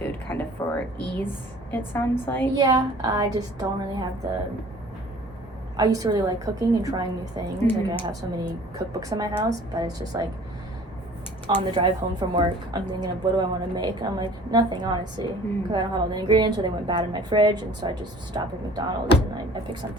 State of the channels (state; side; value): normal; both; correlation 0.49